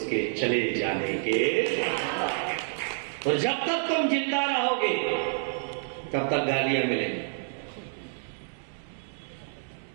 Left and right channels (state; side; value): silent; left; 59 dB below the other